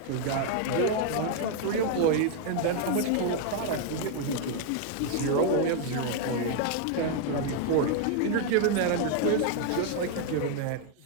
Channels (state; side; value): different; both; correlation 0.00